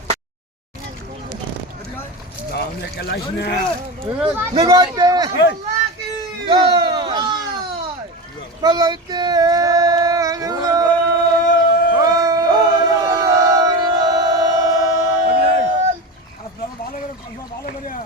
নিগতে বলতে আপনারা ভালো করে ভালো করে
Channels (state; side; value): normal; both; correlation 0.23